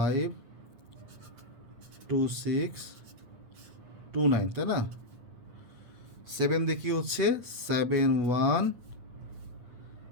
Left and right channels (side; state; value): left; late; 8.3 ms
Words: 2 6 2 9, তাই না। 7 দিয়ে কী হচ্ছে, 7 1